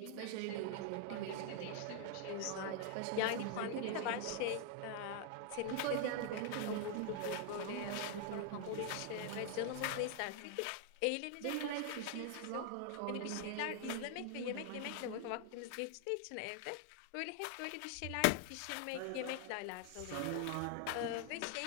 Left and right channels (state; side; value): different; both; correlation 0.00